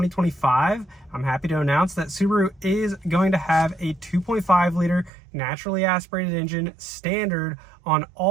I'm happy to announce that Subaru is going to have a 2.5 liter naturally aspirated engine standard on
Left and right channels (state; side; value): drops out; left; at 5.1 s